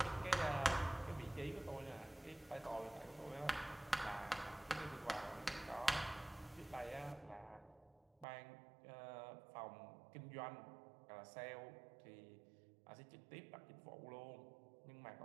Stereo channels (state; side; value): drops out; left; at 8.2 s